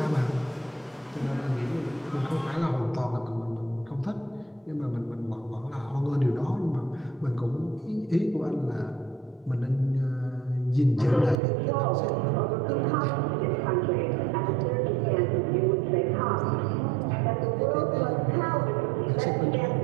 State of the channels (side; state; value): left; drops out; at 11.4 s